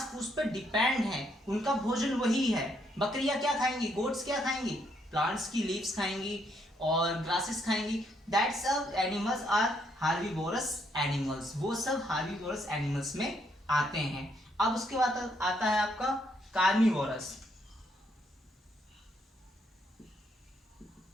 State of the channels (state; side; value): normal; both; correlation 0.73